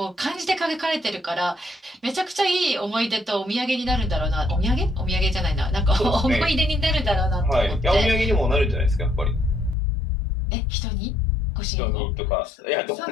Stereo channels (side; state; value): right; drops out; at 9.8 s